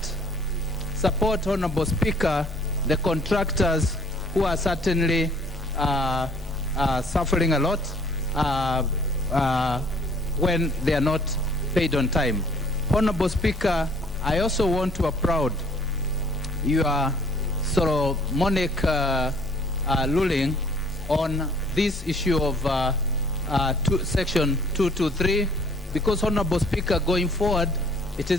Honorable Speaker, the contractors who are certainly suffering a lot when they are not paid on time. Honorable Speaker, I also want to applaud your Solomonic ruling on this issue of Section 223, because, Honorable Speaker, going forward, it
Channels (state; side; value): normal; both; correlation 0.57